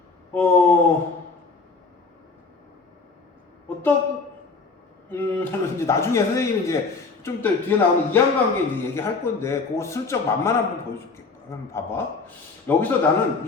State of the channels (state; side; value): quieter; right; 4.3 dB